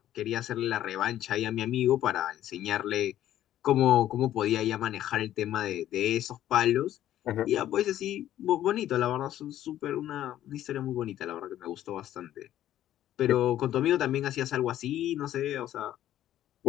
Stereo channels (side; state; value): right; quieter; 12.5 dB